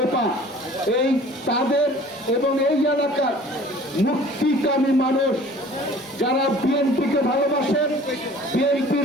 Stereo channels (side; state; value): both; normal; correlation 0.48